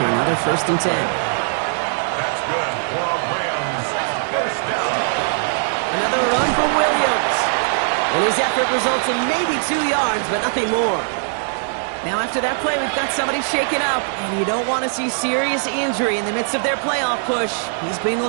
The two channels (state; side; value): silent; left; 66 dB below the other